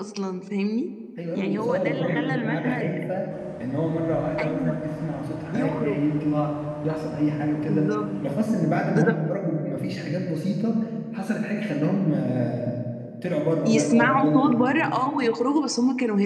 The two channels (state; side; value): identical; both; correlation 1.00